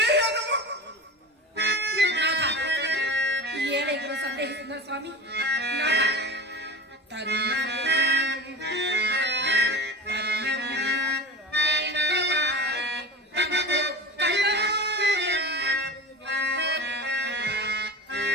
ఏడైనా సందేహిస్తున్నారు స్వామి.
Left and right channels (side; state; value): both; normal; correlation 0.31